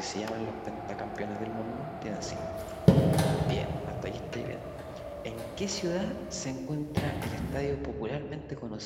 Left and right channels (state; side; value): identical; both; correlation 1.00